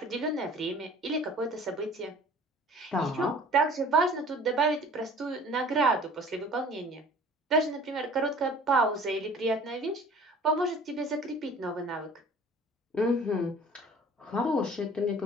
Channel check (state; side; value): normal; both; correlation 0.47